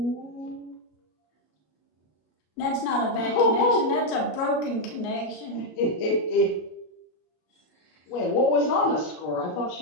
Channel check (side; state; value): right; late; 33 ms